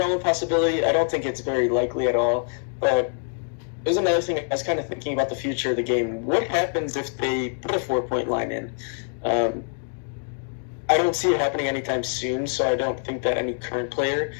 of possibility. I don't think it's very likely at all. But there's another thing I was kind of thinking about the future of the game. What happens if they put a 4-point line in? I don't see it happening anytime soon, so I don't think that any current player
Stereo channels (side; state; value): right; silent; 62 dB below the other